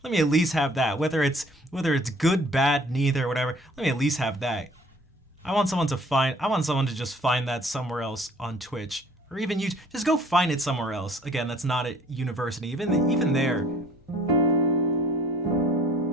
Let me at least have that. Whether it's good, bad, neither, whatever. Let me at least have that. I want someone to just find that somewhere else on Twitch, or even you. Just go find it somewhere else. Again, that's not at university. Even there.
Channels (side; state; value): both; normal; correlation 0.54